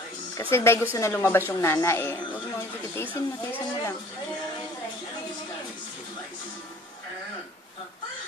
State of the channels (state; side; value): normal; both; correlation 0.50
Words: Kasi dahil gusto na lumabas yung nana eh. Huwag mo, tiisin mo lang.